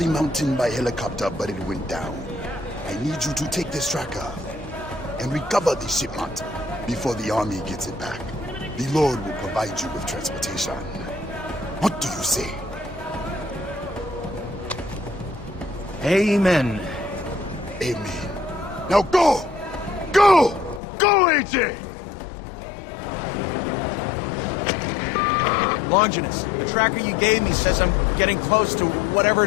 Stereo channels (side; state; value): right; drops out; at 20.8 s